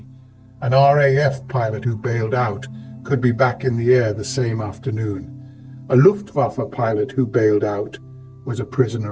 An RAF pilot who bailed out could be back in the air the same afternoon. A Luftwaffe pilot who bailed out was a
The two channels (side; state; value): both; identical; correlation 1.00